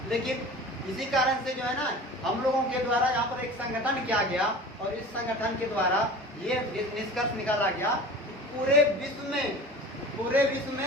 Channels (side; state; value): both; normal; correlation 0.38